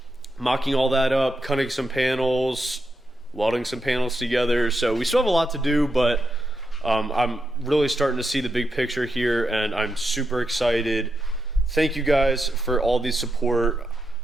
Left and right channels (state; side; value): normal; both; correlation 0.85